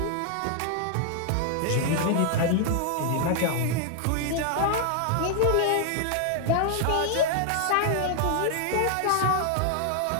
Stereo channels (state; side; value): different; both; correlation 0.00